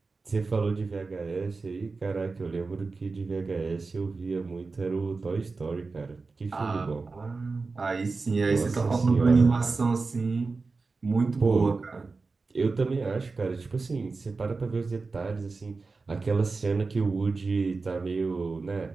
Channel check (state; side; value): quieter; left; 4.1 dB